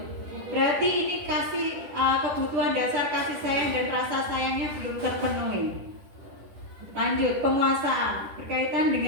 berarti ini kebutuhan dasar kasih sayang dan rasa sayangnya belum terpenuhi. Lanjut, penguasaan berkaitan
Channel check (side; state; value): left; late; 10 ms